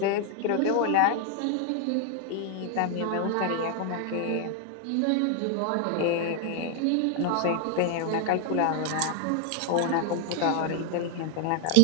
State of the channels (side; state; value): both; different; correlation 0.00